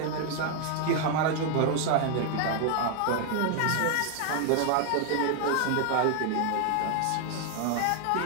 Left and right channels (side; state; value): both; different; correlation 0.00